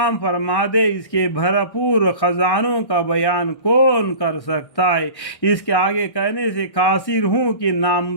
فرما دے اس کے بھرپور خزانوں کا بیان کون کر سکتا ہے۔ اس کے آگے کہنے سے قاصر ہوں کہ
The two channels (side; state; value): right; late; 1.1 ms